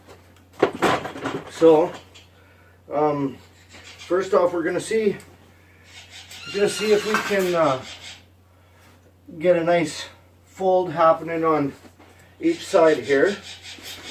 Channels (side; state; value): both; identical; correlation 1.00